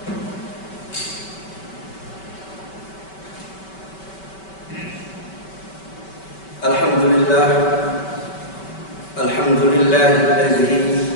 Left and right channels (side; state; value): right; late; 5.2 ms